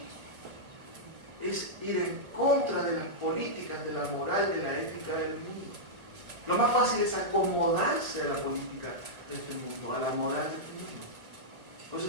es ir en contra de las políticas, de la moral, de la ética del mundo. Lo más fácil es acomodarse a la política de este mundo, a la moral de este mundo. Por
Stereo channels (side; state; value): left; late; 2.0 ms